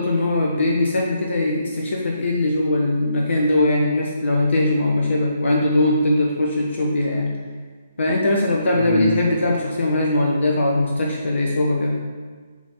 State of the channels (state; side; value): inverted; both; correlation -0.78